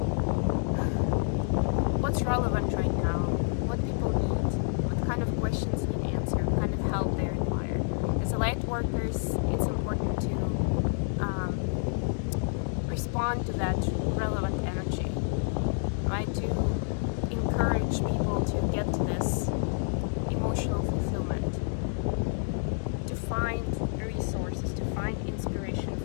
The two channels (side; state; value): right; silent; 59 dB below the other